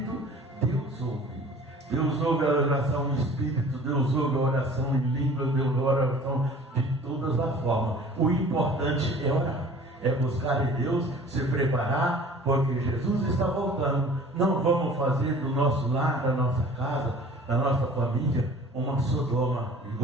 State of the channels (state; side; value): normal; both; correlation 0.46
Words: Deus ouve. Deus ouve a oração em espírito, Deus ouve a oração em língua, Deus ouve a oração de todas as formas. O importante é orar, é buscar em Deus, se preparar, porque Jesus está voltando. Não vamos fazer do nosso lar, da nossa casa, da nossa família, uma Sodoma e